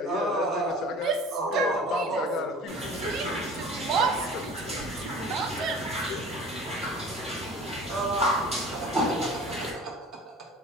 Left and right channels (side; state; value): both; normal; correlation 0.43